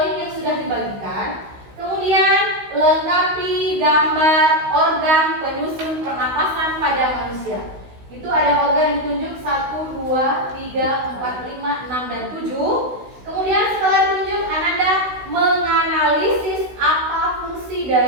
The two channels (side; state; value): left; late; 16 ms